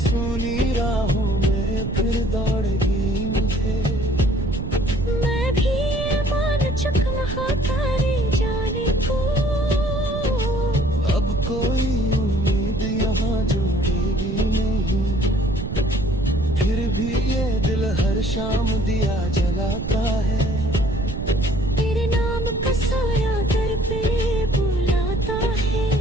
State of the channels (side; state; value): right; noise; rumble, 5 dB below the sound